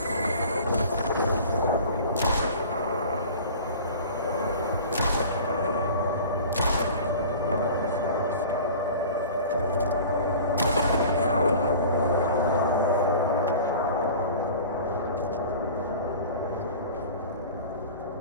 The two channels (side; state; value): both; inverted; correlation -0.40